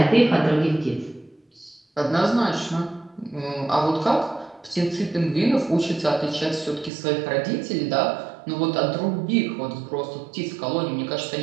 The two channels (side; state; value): left; drops out; at 6.9 s